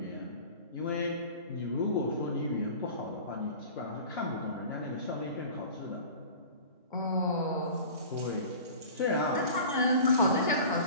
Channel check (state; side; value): inverted; both; correlation -0.39